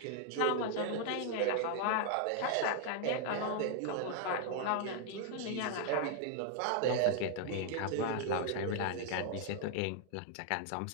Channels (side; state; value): both; different; correlation 0.00